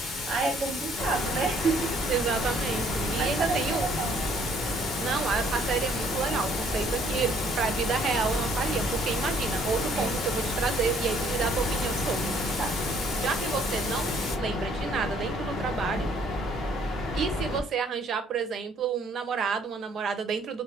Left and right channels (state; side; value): normal; both; correlation 0.63